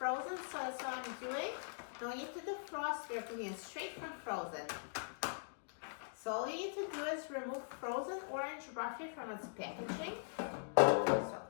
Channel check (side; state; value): right; silent; digital silence